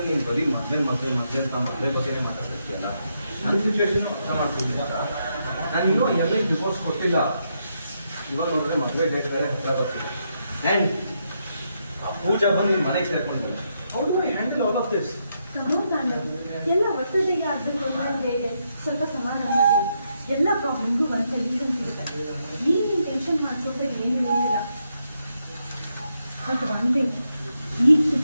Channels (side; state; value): both; inverted; correlation -0.80